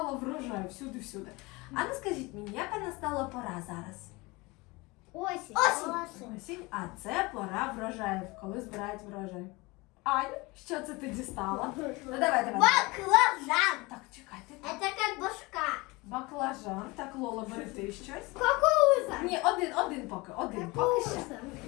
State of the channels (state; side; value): quieter; right; 24.0 dB